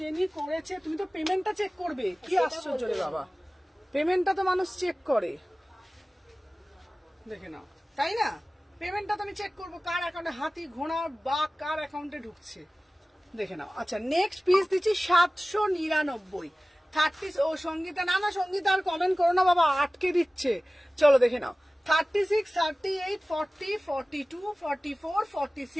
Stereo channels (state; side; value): normal; both; correlation 0.97